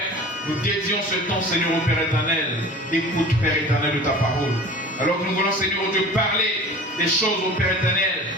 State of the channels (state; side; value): normal; both; correlation 0.40